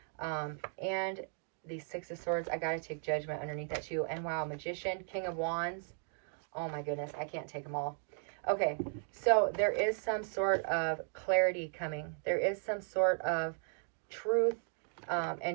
And the Six of Swords. I got to take Judgment underneath that too. And wow, Magician, King of Wands. Oh my goodness, I can't take them all. Okay, so there is some sort of clarity coming. There is some sort of truth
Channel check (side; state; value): left; silent; 54 dB below the other